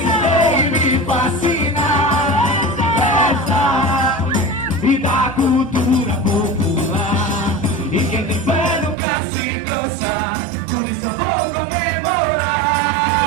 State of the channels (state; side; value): drops out; left; at 9.0 s